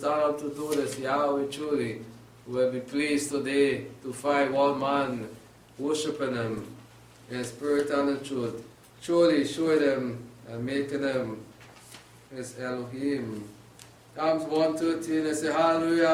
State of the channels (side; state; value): both; identical; correlation 1.00